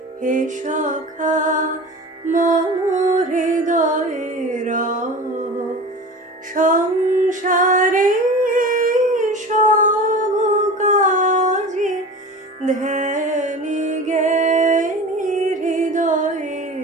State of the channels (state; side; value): normal; both; correlation 0.35